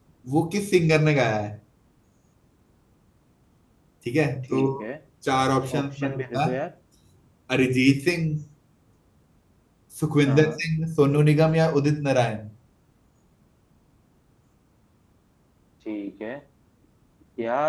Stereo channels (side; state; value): both; identical; correlation 1.00